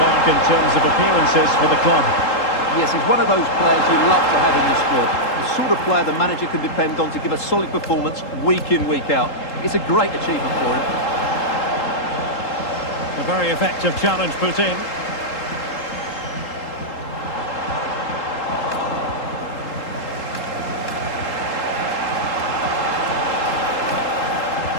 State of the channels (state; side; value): late; right; 3.8 ms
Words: in terms of appearances for the club. Yes, he's one of those players you love to have in your squad. The sort of player the manager can depend on to give a solid performance week in, week out. It's a great achievement for him. A very effective challenge put in.